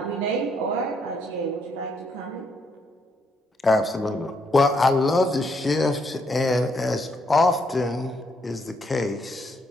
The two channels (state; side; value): normal; both; correlation 0.74